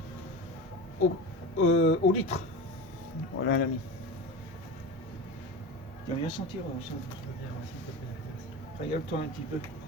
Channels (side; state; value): both; normal; correlation 0.29